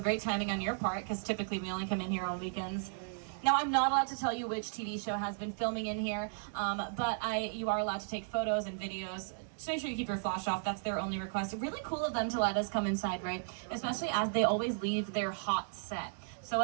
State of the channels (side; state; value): left; silent; digital silence